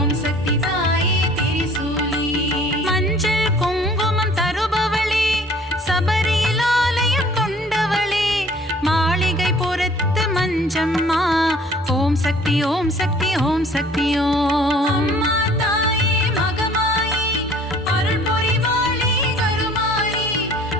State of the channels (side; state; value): both; normal; correlation 0.53